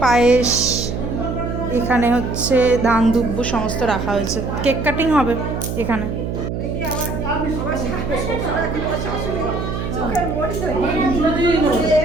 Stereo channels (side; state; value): right; noise; hum, 4 dB below the sound